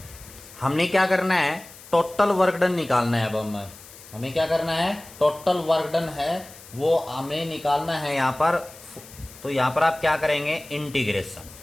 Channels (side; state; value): left; noise; hiss, 19 dB below the sound